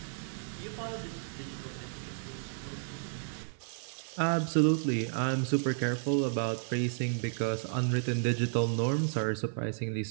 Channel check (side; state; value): left; silent; 56 dB below the other